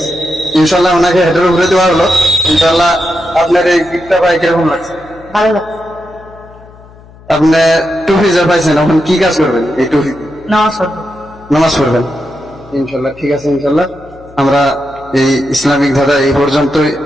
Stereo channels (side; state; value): left; noise; hum, 23 dB below the sound